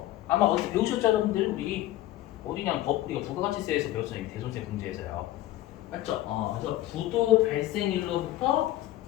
아마 어디 배우셨죠, 여러분들? 우리 어디냐 우리가 부가가치세에서 배웠어요. 대손세 문제에서요. 맞죠? 그래서 부도 발생일로부터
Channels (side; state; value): right; quieter; 15.0 dB